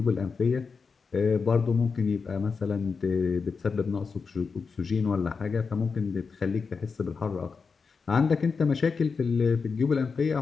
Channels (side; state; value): right; quieter; 5.1 dB